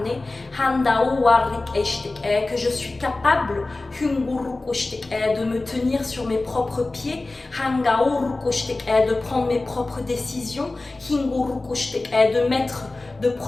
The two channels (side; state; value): right; quieter; 3.1 dB